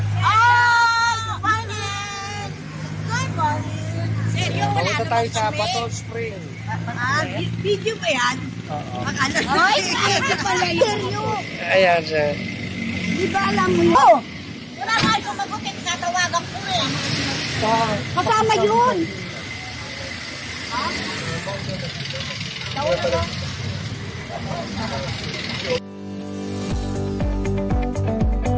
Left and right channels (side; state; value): both; identical; correlation 1.00